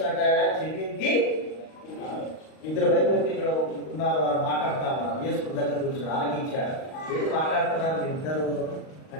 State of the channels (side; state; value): right; late; 38 ms